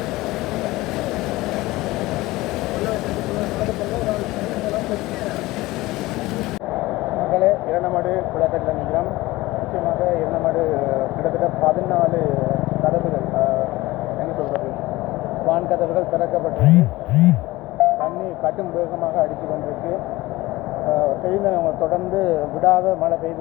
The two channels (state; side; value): quieter; right; 19.2 dB